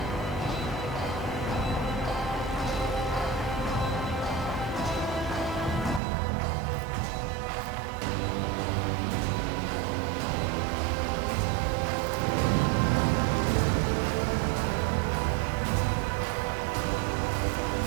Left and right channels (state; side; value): drops out; left; at 6.0 s